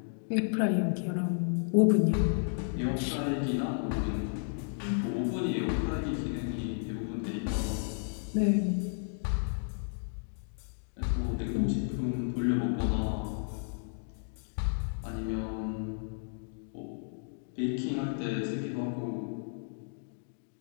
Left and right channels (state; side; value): silent; right; digital silence